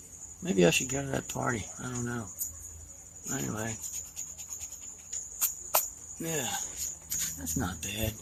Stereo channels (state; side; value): identical; both; correlation 1.00